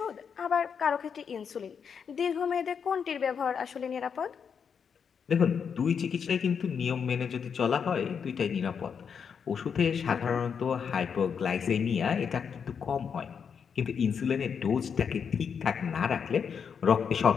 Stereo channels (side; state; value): right; quieter; 6.8 dB